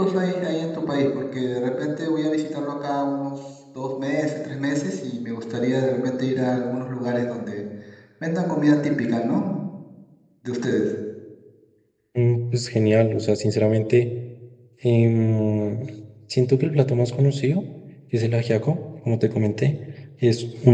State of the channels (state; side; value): identical; both; correlation 1.00